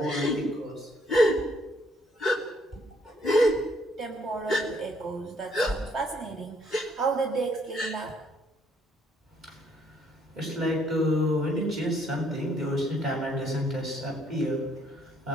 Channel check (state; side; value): normal; both; correlation 0.67